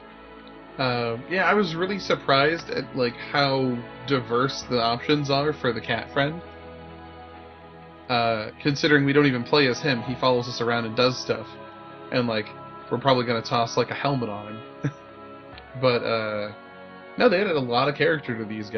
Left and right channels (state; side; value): identical; both; correlation 1.00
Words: Yeah, I was really surprised at like how diverse the options are for the cat friend. Considering we don't even play as him, he follows us around and does stuff. And like, we're probably gonna toss like a helmet on him. But no, they added a lot of character to these